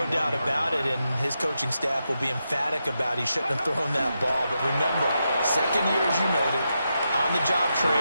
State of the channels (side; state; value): both; inverted; correlation -0.86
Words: doubt about it, and his coaching staff will be emphatic about he shouldn't have thrown that ball. But remember, second year, as you noted, on-the-job